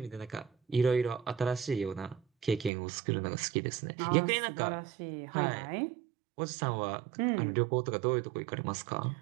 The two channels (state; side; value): drops out; left; at 2.7 s